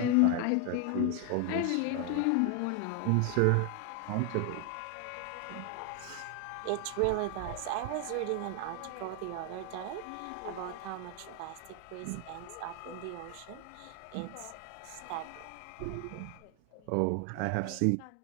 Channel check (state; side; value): different; both; correlation 0.01